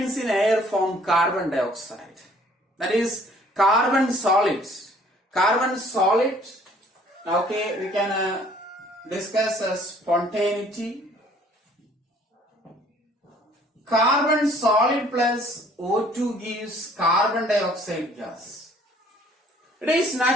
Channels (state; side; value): normal; both; correlation 0.57